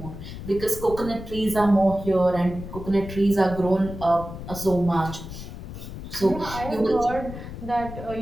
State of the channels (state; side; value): noise; left; rumble, 10 dB below the sound